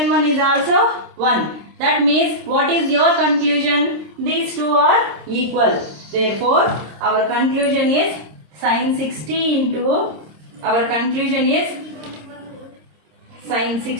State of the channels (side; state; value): left; late; 26 ms